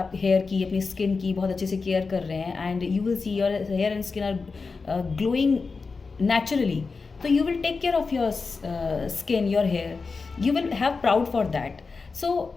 हेयर की, अपनी स्किन की बहुत अच्छे से केयर कर रहे हैं and you will see your hair and skin are glowing naturally, so you will take care of your skin, your hair, you will have proud for that. So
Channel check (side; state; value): right; quieter; 4.5 dB